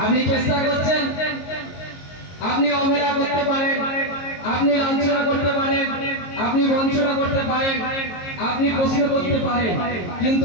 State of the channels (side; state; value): right; late; 22 ms